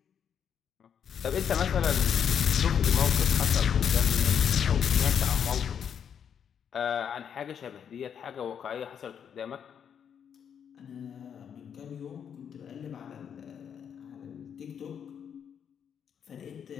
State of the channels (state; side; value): quieter; right; 8.0 dB